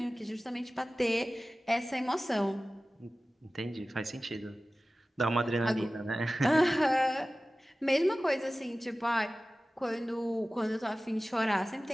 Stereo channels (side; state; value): both; normal; correlation 0.96